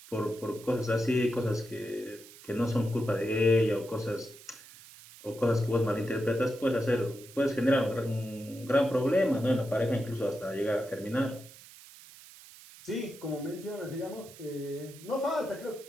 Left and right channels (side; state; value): right; noise; hiss, 19 dB below the sound